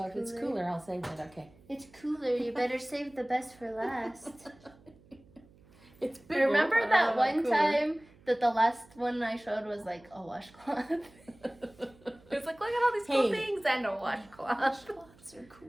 cooler. If it's cooler, I'll save it. Okay. It's cooler. You better save the best for last. It's bigger. Remember that one time that the last one I showed was like a washcloth? It's like, look at all these cool things and a washcloth. Washcloths are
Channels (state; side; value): noise; right; hum, 26 dB below the sound